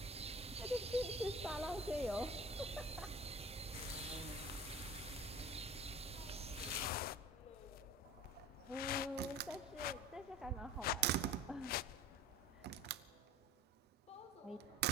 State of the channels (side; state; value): both; normal; correlation 0.41